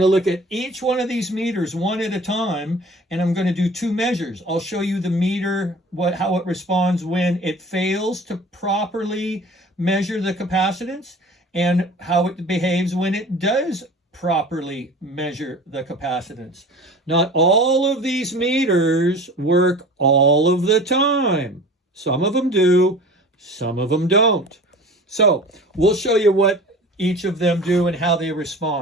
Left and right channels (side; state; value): both; normal; correlation 0.41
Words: look at each one of these meters one at a time, and I'm going to do 2 measures. I'll show you the meter, how it responds when it fails to properly measure the capacitance, and how it behaves when it does properly measure the capacitance. Not all of these meters work all of the time. Some of them do, some of them don't. So we'll show you what each of them do and how they